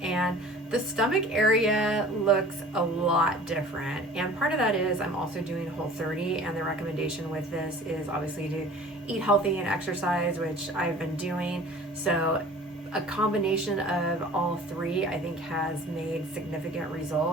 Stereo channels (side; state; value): both; normal; correlation 0.45